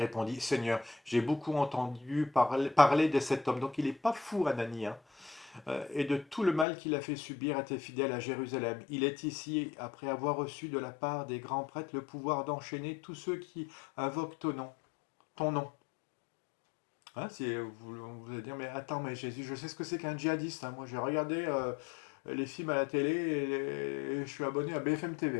Seigneur, j'ai beaucoup entendu parler de cet homme. Donc il n'est pas fou, Anani, hein, et de tout le mal qu'il a fait subir à tes fidèles à Jérusalem. Il est ici après avoir reçu de la part des grands prêtres le pouvoir d'enchaîner tous ceux qui invoquent ton nom. Ton nom. Hein, vous allez dire, mais attends, mais Jésus, je sais ce que c'est qu'un djihadiste, hein. Moi, j'ai regardé les films à la télé et je suis abonné à BFM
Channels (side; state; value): right; drops out; at 6.7 s